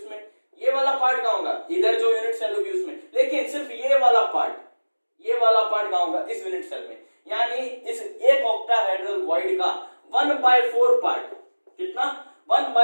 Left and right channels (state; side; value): inverted; both; correlation -1.00